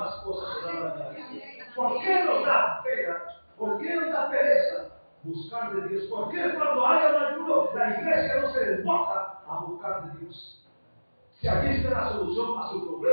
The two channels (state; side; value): inverted; both; correlation -1.00